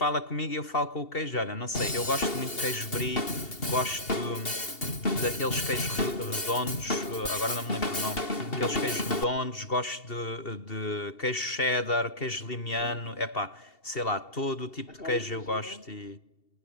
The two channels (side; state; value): right; late; 2.7 ms